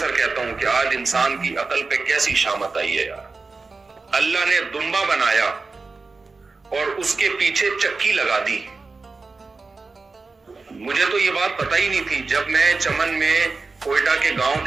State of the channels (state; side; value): quieter; left; 4.0 dB